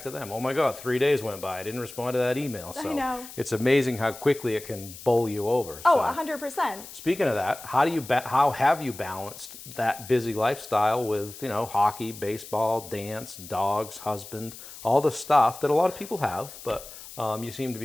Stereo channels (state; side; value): noise; left; hiss, 15 dB below the sound